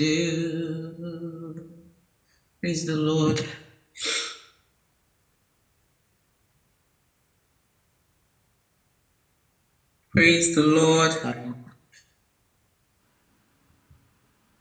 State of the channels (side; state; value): both; identical; correlation 1.00